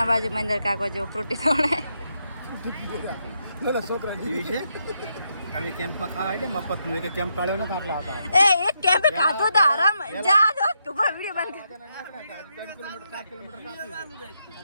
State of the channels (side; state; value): both; inverted; correlation -0.81